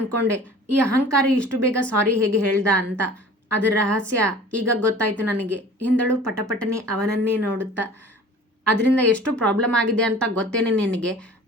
ಈ ಅಹಂಕಾರಿ ಇಷ್ಟು ಬೇಗ ಸಾರಿ ಹೇಗೆ ಹೇಳ್ದ ಅಂತ. ಅದರ ರಹಸ್ಯ ಈಗ ಗೊತ್ತಾಯ್ತು ನನಗೆ ಎಂದಳು ಪಟಪಟನೆ ಅವನನ್ನೇ ನೋಡುತ್ತಾ. ಅದರಿಂದ ಎಷ್ಟು ಪ್ರಾಬ್ಲಮ್ ಆಗಿದೆ ಅಂತ ಗೊತ್ತೇನೆ ನಿನಗೆ?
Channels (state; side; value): normal; both; correlation 0.45